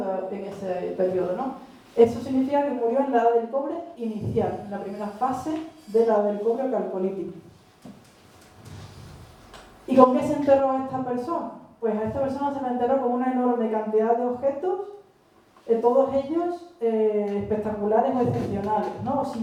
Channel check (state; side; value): identical; both; correlation 1.00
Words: en ese periodo, ¿no? Eso significa que murió en la edad del cobre inicial, en la primera fase de la edad del cobre calcolítico. ¿Y con qué se enterró a esta persona? Pues a esta persona se la enterró con una enorme cantidad de objetos, todos ellos espectaculares o excepcionales, ¿no?